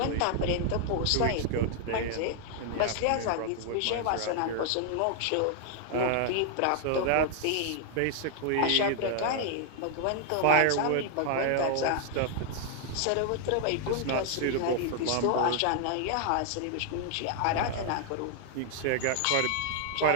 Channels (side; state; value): both; different; correlation 0.00